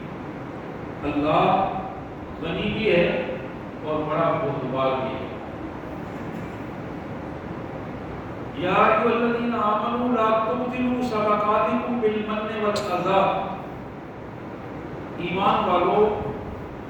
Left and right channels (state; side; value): identical; both; correlation 1.00